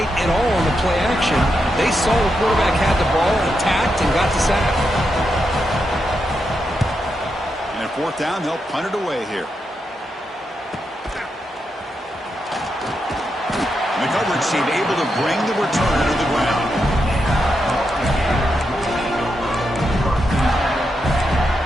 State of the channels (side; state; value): both; normal; correlation 0.84